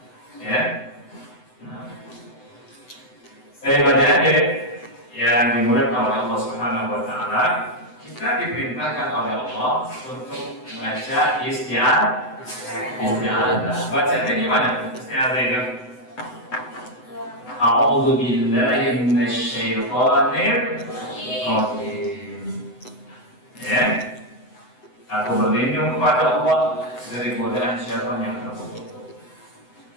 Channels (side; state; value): right; late; 8.0 ms